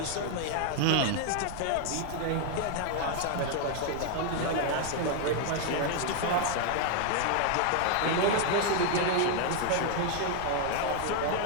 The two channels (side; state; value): both; different; correlation 0.00